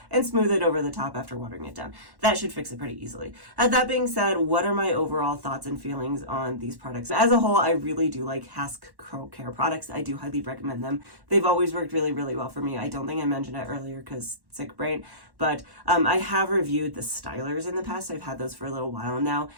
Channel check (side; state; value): left; late; 1.1 ms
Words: and smooth it over the top after watering it down. That should fix it pretty easily. That being said, what are my overall thoughts and feelings on these products? As a whole, I really do like Hask curl care products. I do highly recommend them. They've always worked really, really well for me. I don't think I mentioned it earlier because sick brain, but I have reviewed the stylers in the past. I've had those for a little while now,